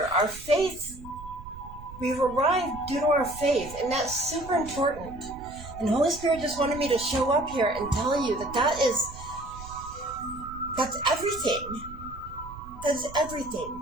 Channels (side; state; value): right; noise; rumble, 15 dB below the sound